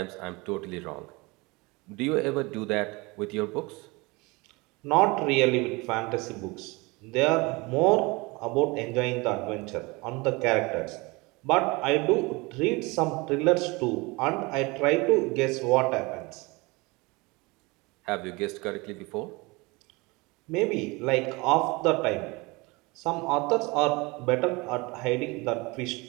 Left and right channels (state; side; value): quieter; left; 25.1 dB